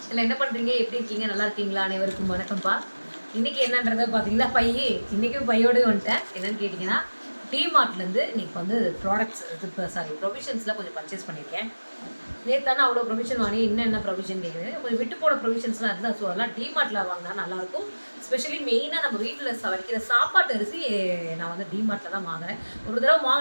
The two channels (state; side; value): inverted; both; correlation -1.00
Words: இதில் என்ன பண்ணுறீங்க, எப்படி இருக்கீங்க, நல்லா இருக்கீங்களா? அனைவருக்கும் வணக்கம்ப்பா. இன்றைக்கி என்னன்றதை பார்த்தீங்கன்னா, இன்றைக்கும் பையோடு வந்துட்டேன். என்னென்னு கேட்டிங்கன்னா, டிமார்ட்லேருந்து இன்றைக்கி வந்து ப்ராடக்ட்ஸ் ப்ரொவிஷன்ஸில் கொஞ்சம் பர்ச்சேஸ் பண்ணியிருக்கேன். நேற்று அவ்வளோ ப்ரொவிஷன் வாங்கி என்ன ப்ரொவிஷன் கேட்குது, கொஞ்சம் விட்டு போட ப்ரொவிஷன்ஸ்லாம் இருந்தால் ஸோ அதெல்லாம் டிமார்ட்டில் வாங்கினா நல்லாயிருக்கும். ஸ்பெஷலி மெயினாக நம்ம வீட்டில் வைக்கிற சாப்பாட்டு அரிசி நான் வந்து டிமார்ட்டில் தான் வாங்குறேன். ஒரு தடவை